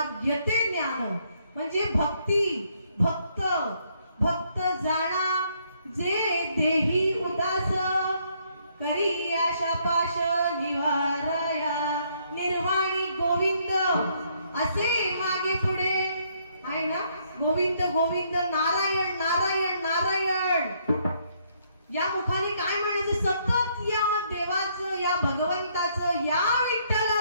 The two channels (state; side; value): inverted; both; correlation -0.70